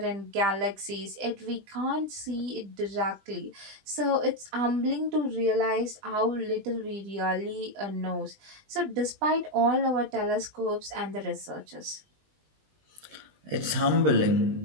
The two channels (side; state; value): left; late; 20 ms